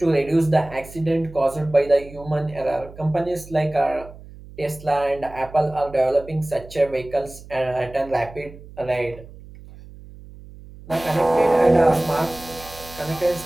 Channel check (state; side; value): noise; right; hum, 18 dB below the sound